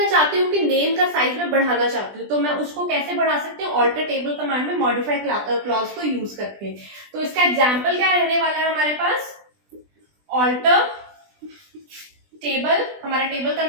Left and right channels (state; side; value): late; left; 20 ms